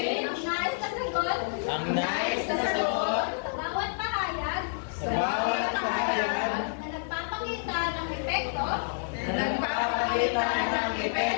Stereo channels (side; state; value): right; silent; digital silence